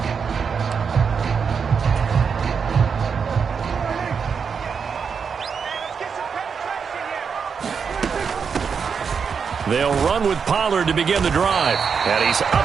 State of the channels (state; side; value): quieter; left; 6.2 dB